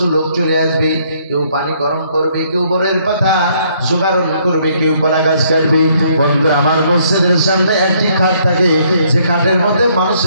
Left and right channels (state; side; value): inverted; both; correlation -0.67